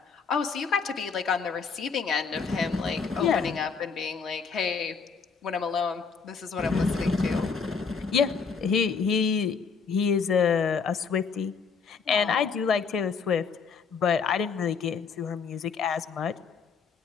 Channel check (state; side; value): quieter; right; 5.6 dB